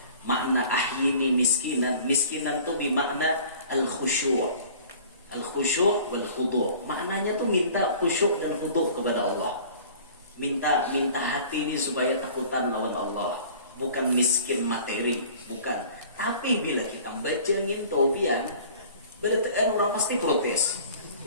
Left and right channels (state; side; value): inverted; both; correlation -0.47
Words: Makna ahyini miskinan, miskinan itu bermakna al-khusyu'. Al-khusyu' wal khudu'. Maknanya tuh minta khusyuk dan khudu' kepada Allah. Minta hati ini supaya takutan lawan Allah, bukan miskin materi, bukan. Tapi bila kita baca ngintobian, berarti orang pasti protes.